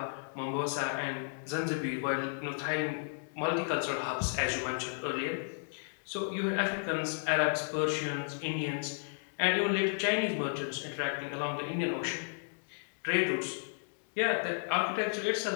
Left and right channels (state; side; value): silent; right; digital silence